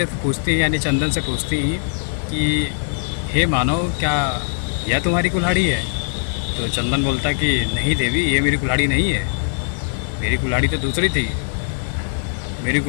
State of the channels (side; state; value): right; silent; 65 dB below the other